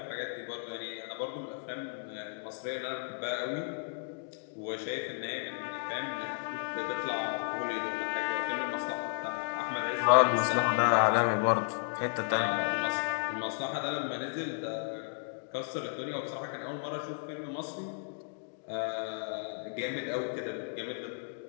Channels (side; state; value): right; silent; digital silence